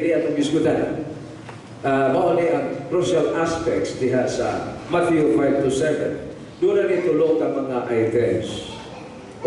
atong diskutan, mauni ang crucial aspects diha sa Matthew 5 to 7. Doon na tulo ka mga items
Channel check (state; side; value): identical; both; correlation 1.00